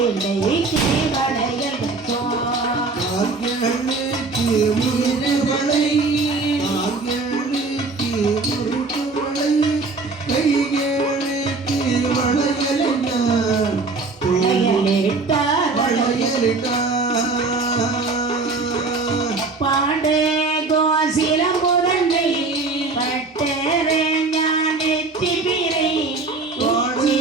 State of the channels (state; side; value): quieter; left; 3.8 dB